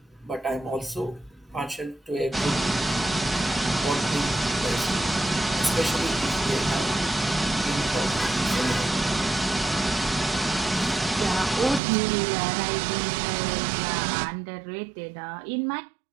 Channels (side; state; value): left; drops out; at 11.8 s